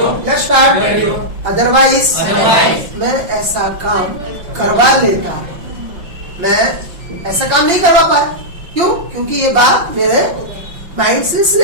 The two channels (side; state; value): left; late; 5.6 ms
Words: Otherwise, मैं ऐसा काम करवा लेता, मैं ऐसा काम नहीं करवा पाया। क्यों? क्योंकि ये बात मेरे माइंड से